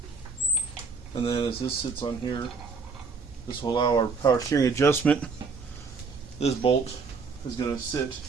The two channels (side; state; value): left; quieter; 4.7 dB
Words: And then as this sits on here, this will allow our power steering adjustment. This bolt is going to sit